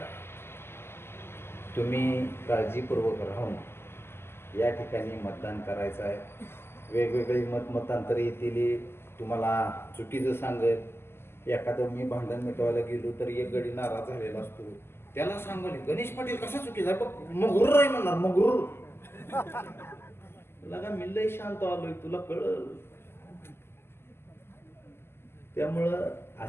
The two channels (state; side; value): late; right; 0.12 ms